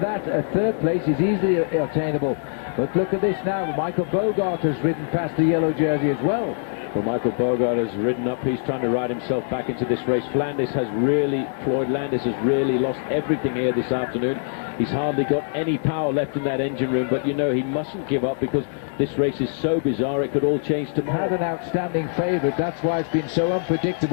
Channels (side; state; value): right; silent; 63 dB below the other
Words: that third place is easily attainable. But look at this now, Michael Bogart has ridden past the yellow jersey as well. Well, Michael Bogart has ridden up. He's trying to ride himself back into this race. Floyd Landis has really lost everything here this afternoon. He's hardly got any power left in that engine room, but you know he mustn't give up because this race is so bizarre it could all change tomorrow. Had an outstanding favourite, that's why it's been so